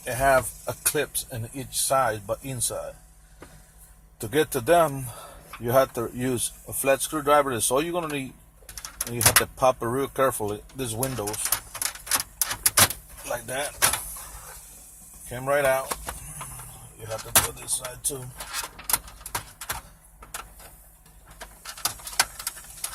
it have a clips in each side, but inside. To get to them, you have to use a flat screwdriver. That's all you're gonna need. And you have to pop it real carefully. These windows, like that, came right out. You have to do this side too.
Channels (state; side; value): identical; both; correlation 1.00